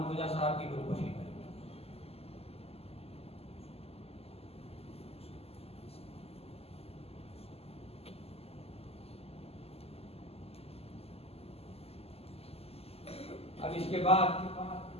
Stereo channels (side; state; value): right; late; 0.29 ms